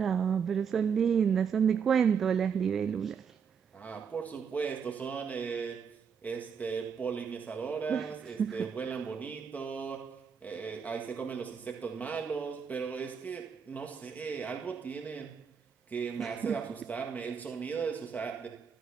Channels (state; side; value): quieter; left; 6.7 dB